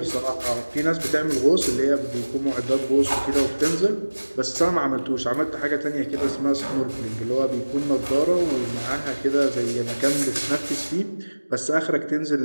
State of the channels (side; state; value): both; inverted; correlation -1.00